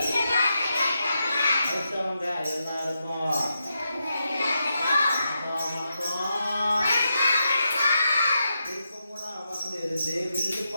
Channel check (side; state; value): both; inverted; correlation -0.86